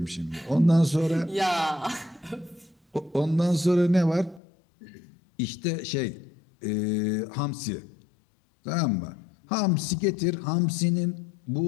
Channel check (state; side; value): drops out; right; at 4.4 s